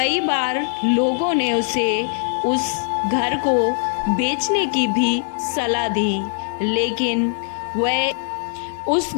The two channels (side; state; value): right; silent; digital silence